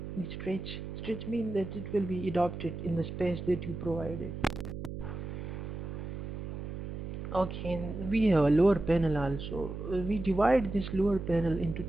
The stretch means that it will be adopted in the space that you provided. Okay, and we have a lower panel also. We divide this lower panel into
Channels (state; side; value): noise; right; hum, 7 dB below the sound